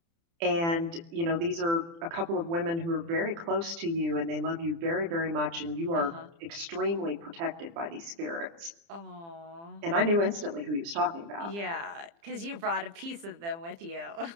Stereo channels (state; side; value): late; left; 30 ms